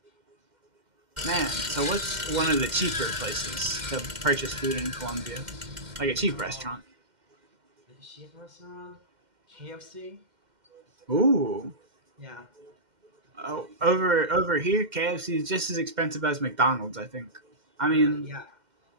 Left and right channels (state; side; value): late; left; 2.1 ms